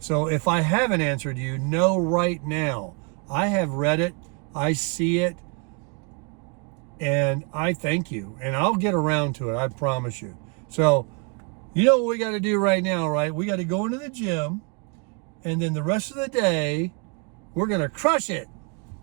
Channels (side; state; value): left; quieter; 33.7 dB